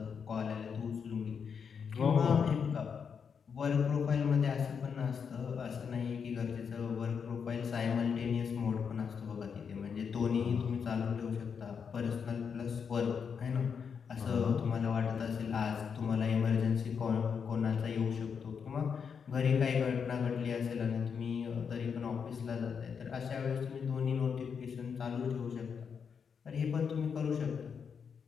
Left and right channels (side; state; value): right; quieter; 6.5 dB